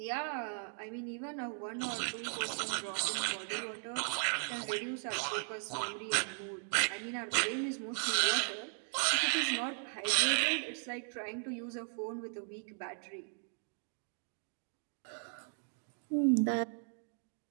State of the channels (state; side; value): silent; left; 53 dB below the other